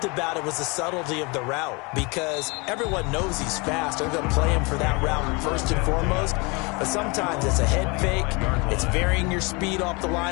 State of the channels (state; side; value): quieter; right; 28.4 dB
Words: about it was the subtlety of the route, because everyone knows he's fast. They're going to play him for that route first and foremost, but sometimes it's a head fake. It's varying your speed off the